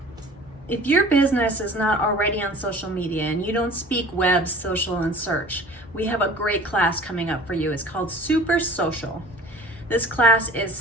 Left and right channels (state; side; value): normal; both; correlation 0.44